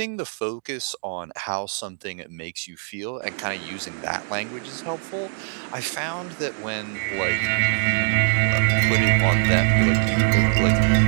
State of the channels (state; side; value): silent; left; digital silence